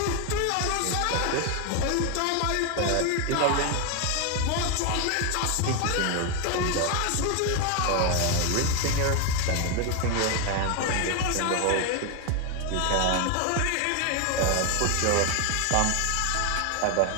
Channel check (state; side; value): different; both; correlation 0.01